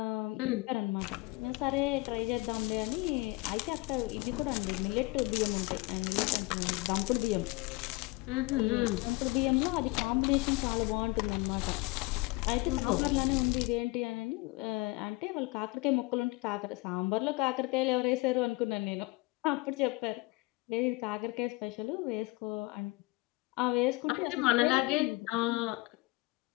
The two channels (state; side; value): quieter; right; 23.6 dB